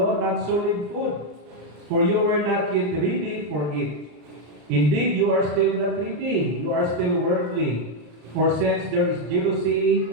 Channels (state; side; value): late; left; 34 ms